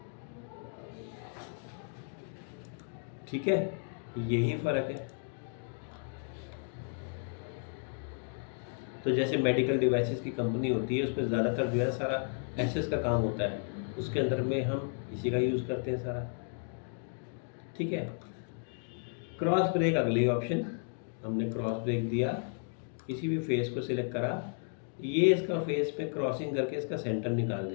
ठीक है, यही फ़र्क है। तो जैसे मेडिकल डिवाइसेस की कंपनी होती है, उसमें ज़्यादातर जो है सारा एसएस का काम होता है, उसके अंदर में हम इसी का यूज़ करते हैं सारा, ठीक है। क्रॉस ब्रेक अगली ऑप्शन, हमने क्रॉस ब्रेक दिया, किसी भी फेस को सिलेक्ट करा, ये इसका फेस पे क्रॉसिंग करके इसका सेंटर निकाल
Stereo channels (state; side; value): silent; right; 55 dB below the other